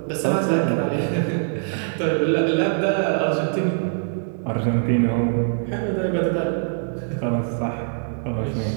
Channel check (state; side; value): silent; left; 63 dB below the other